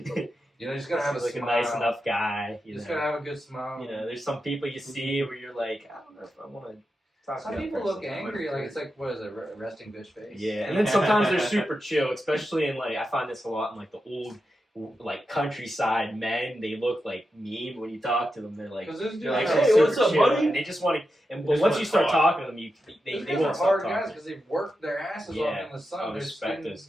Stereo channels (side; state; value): both; normal; correlation 0.89